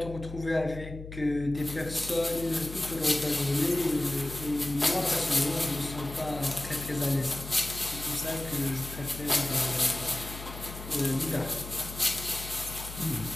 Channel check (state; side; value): noise; left; hum, 11 dB below the sound